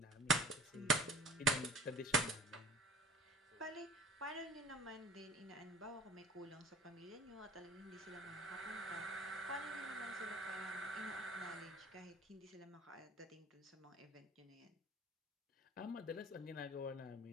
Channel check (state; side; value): normal; both; correlation 0.46